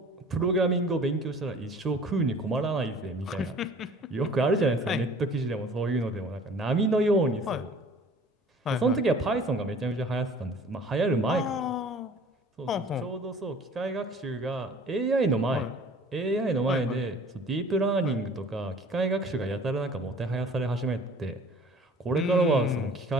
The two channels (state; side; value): normal; both; correlation 0.49